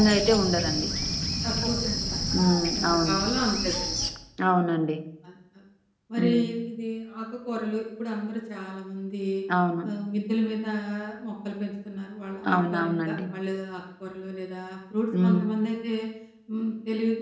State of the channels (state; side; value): identical; both; correlation 1.00